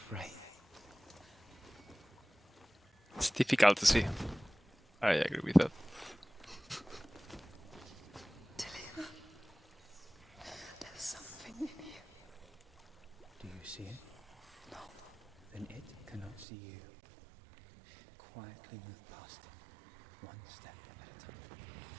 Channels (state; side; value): drops out; left; at 16.4 s